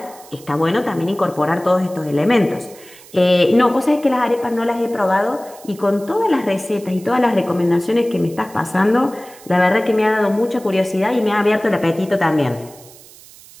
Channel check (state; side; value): noise; right; hiss, 22 dB below the sound